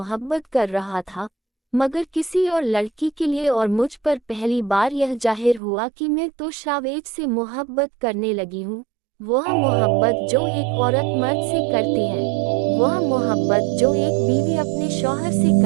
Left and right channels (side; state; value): left; drops out; at 5.6 s